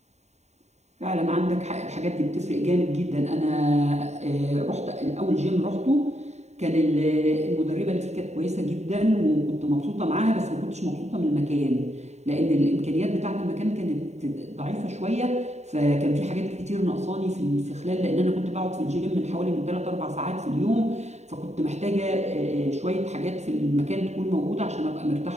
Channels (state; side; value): late; left; 0.32 ms